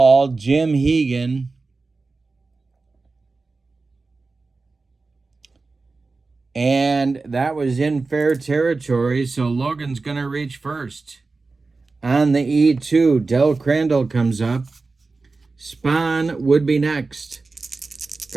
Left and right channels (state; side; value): quieter; left; 3.8 dB